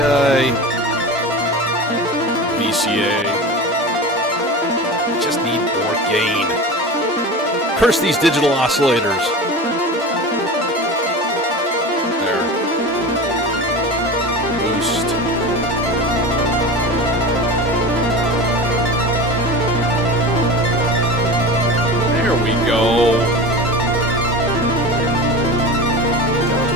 VCA. just need more gain. Curse these digital oscillators. There. Boost. There we go. Down to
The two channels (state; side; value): normal; both; correlation 0.30